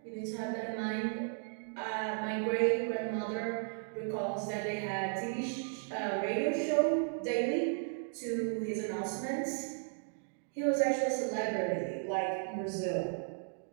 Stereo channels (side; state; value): left; silent; digital silence